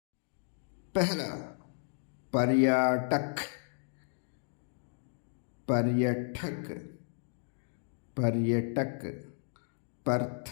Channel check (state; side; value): silent; right; digital silence